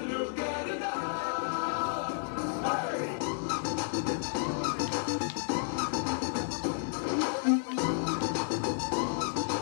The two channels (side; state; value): right; silent; digital silence